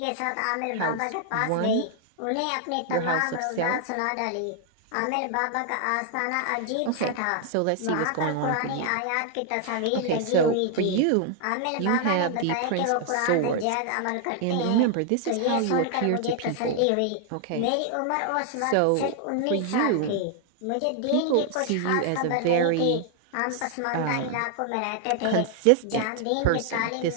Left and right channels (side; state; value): both; different; correlation 0.00